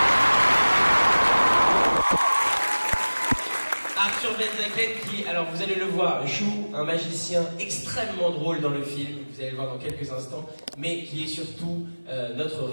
Arthur Benzaken qui, alors vous allez le voir, joue un magicien extrêmement drôle dans le film, vous allez le voir dans quelques instants, mais qui est surtout notre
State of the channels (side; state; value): both; inverted; correlation -1.00